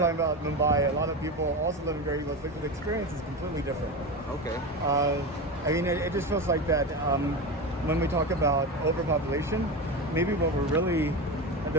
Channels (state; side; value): normal; both; correlation 0.22